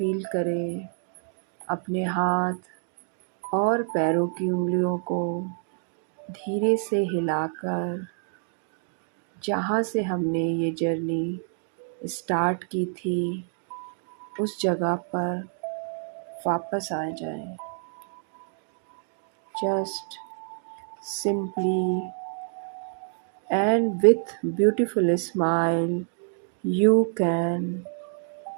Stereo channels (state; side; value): silent; left; 60 dB below the other